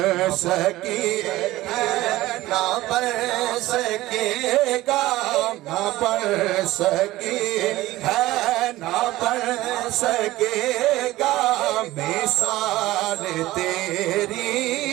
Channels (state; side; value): quieter; left; 17.1 dB